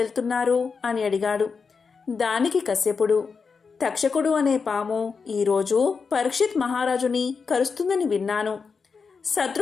అని అడిగాడు. దానికి కశ్యపుడు, తక్షకుడు అనే పాము ఈరోజు పరీక్షిత్ మహారాజుని కరుస్తుందని విన్నాను.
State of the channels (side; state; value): right; quieter; 5.3 dB